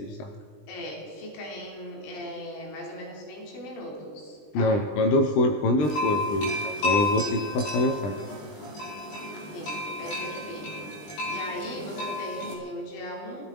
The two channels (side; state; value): right; late; 20 ms